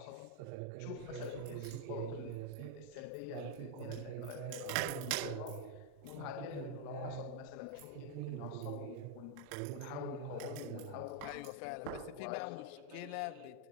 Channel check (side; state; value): both; different; correlation 0.00